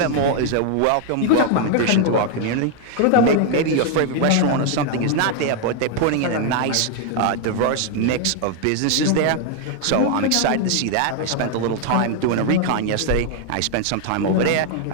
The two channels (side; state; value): both; different; correlation 0.00